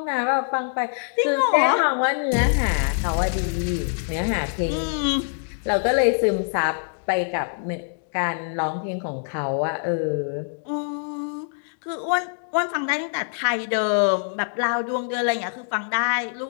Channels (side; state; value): right; silent; digital silence